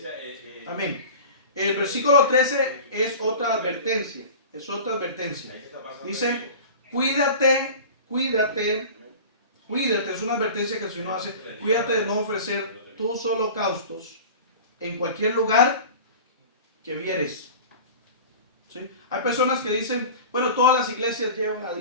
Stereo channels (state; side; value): inverted; both; correlation -0.37